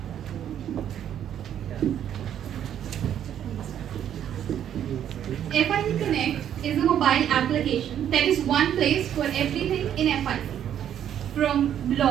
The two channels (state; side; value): quieter; left; 10.0 dB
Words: FIC Connect is a mobile application that is one place for everything in FIC. From